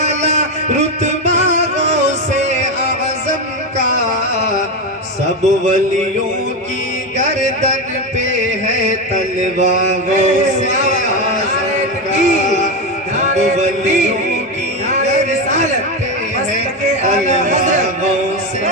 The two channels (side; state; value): both; normal; correlation 0.13